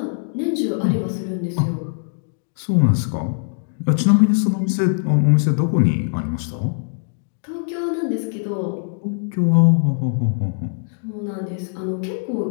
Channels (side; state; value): right; silent; digital silence